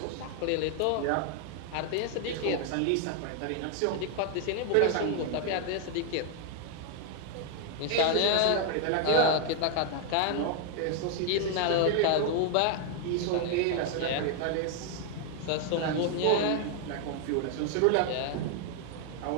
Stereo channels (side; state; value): both; different; correlation 0.00